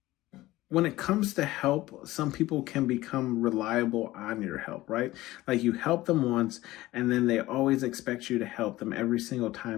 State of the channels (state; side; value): quieter; right; 17.3 dB